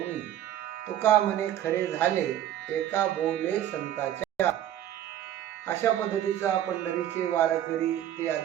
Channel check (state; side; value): quieter; left; 11.7 dB